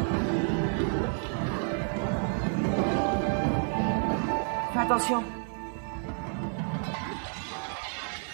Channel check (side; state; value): left; silent; 58 dB below the other